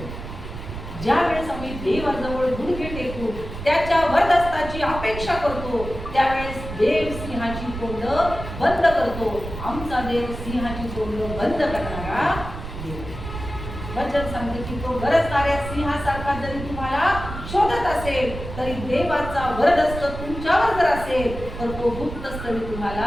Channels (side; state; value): right; noise; rumble, 9 dB below the sound